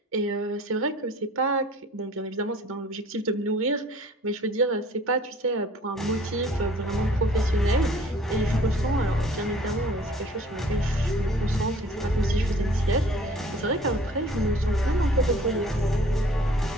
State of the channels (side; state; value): both; normal; correlation 0.51